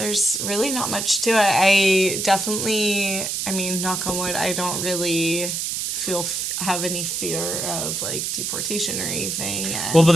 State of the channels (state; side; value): noise; right; hiss, 2 dB below the sound